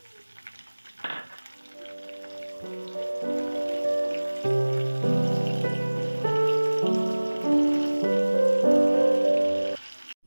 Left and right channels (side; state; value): both; inverted; correlation -1.00